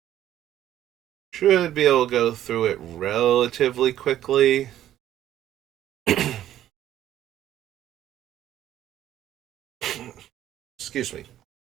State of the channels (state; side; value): quieter; left; 12.2 dB